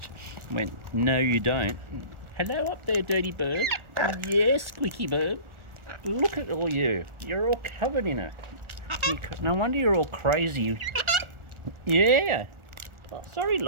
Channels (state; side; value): late; left; 1.4 ms